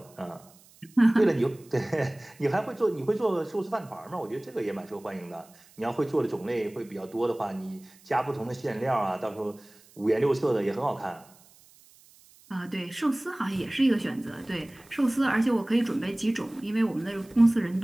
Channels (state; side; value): noise; right; hiss, 27 dB below the sound